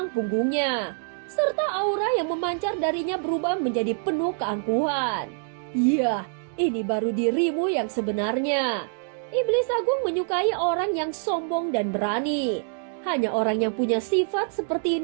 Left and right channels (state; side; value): silent; left; digital silence